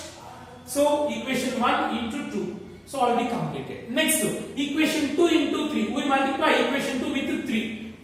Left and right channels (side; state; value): both; identical; correlation 1.00